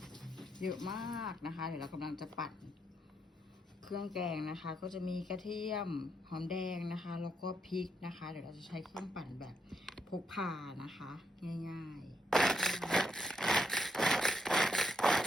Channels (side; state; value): both; normal; correlation 0.78